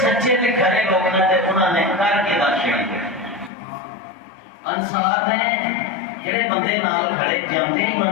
تے کھرے لوگ نے تے انہوں نے کر کے داشیا۔ انصار نے جڑے بندے نال کھڑے جاندے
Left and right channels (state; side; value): drops out; right; at 3.5 s